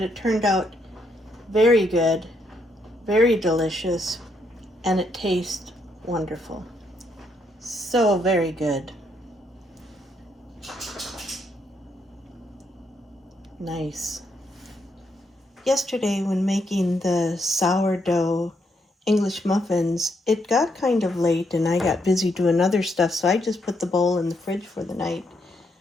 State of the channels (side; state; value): both; normal; correlation 0.76